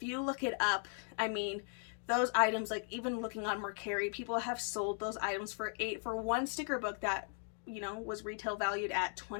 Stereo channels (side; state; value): right; silent; 53 dB below the other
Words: you look it up, I mean, those items, like even looking on Mercari, people have sold those items for one sticker book that, you know, was retail valued at